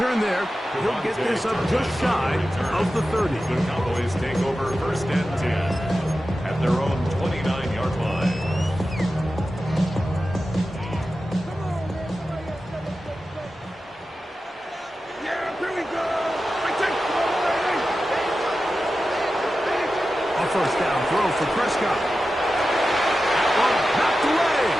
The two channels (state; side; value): normal; both; correlation 0.93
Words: there. He'll get this up just shy of the 30. The Cowboys take over first and 10 at their own 29-yard line. First down throw for Prescott. That one knocked away.